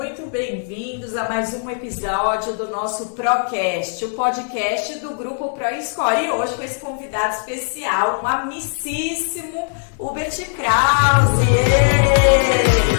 bem-vindos a mais um episódio do nosso Procast, o podcast do Grupo ProScore. E hoje com esse convidado especial, um amicíssimo Hubert Krause.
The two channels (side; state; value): right; silent; digital silence